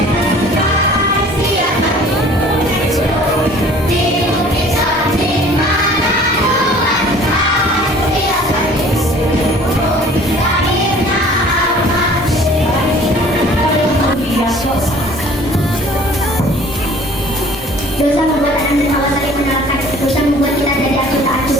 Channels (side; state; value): both; normal; correlation 0.51